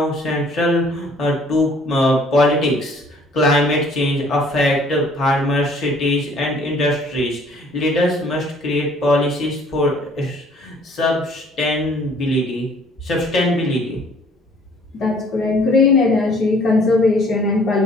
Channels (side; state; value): both; normal; correlation 0.57